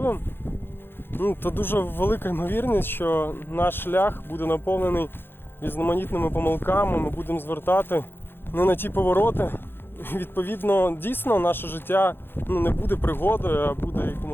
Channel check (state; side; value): late; right; 0.10 ms